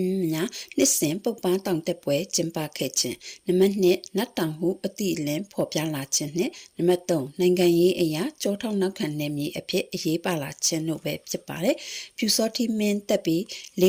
များနှစ်စဉ်ပုပ္ပါတောင်တက်ပွဲကျင်းပခဲ့ခြင်းနံပါတ်2နတ်တောင်ဟုအတိအလင်းဖော်ပြလာခြင်းနဲ့နံပါတ်3နိုင်ငံရေးအရာကြောထောက်နောက်ခံနယ်မြေအဖြစ်အရေးပါလာခြင်းတို့ပဲဖြစ်ပါတယ်ပြူစောတိမင်းတက်ပြီး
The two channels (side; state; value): both; identical; correlation 1.00